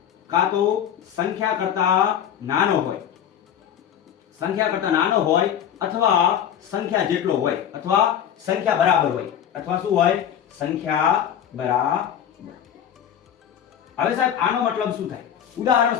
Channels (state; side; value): quieter; right; 9.4 dB